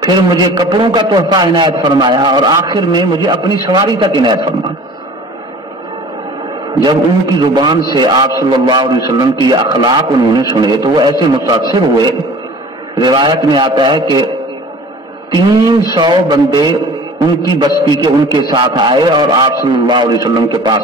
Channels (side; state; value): both; normal; correlation 0.44